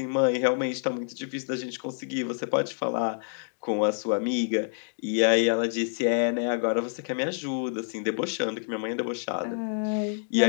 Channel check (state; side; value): silent; right; digital silence